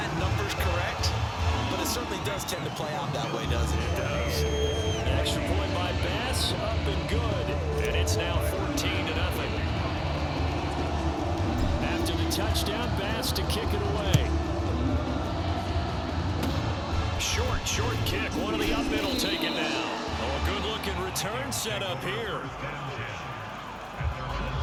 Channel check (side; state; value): both; identical; correlation 1.00